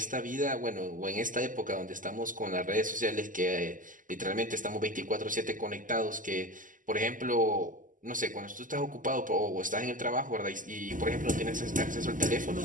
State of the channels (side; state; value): left; late; 0.38 ms